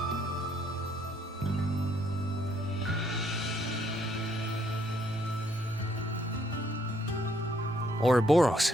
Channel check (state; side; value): normal; both; correlation 0.69